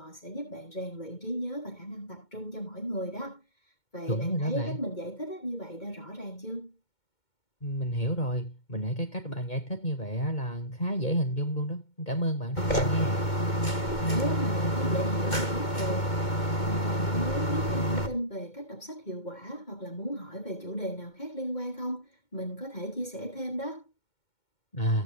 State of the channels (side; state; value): right; late; 2.2 ms